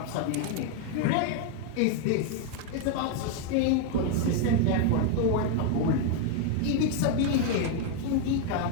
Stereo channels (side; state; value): both; different; correlation 0.01